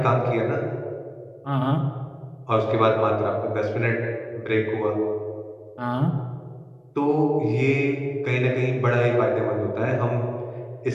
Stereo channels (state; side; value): identical; both; correlation 1.00